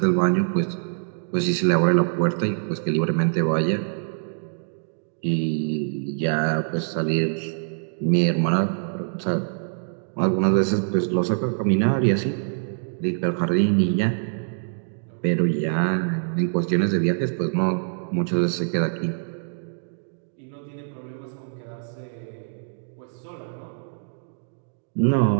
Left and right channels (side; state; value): left; silent; digital silence